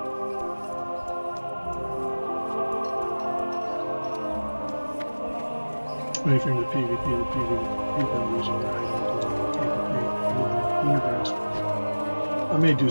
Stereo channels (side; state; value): both; inverted; correlation -1.00